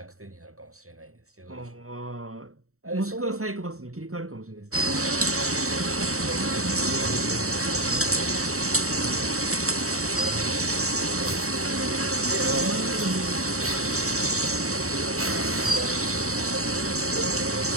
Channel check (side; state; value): left; late; 0.64 ms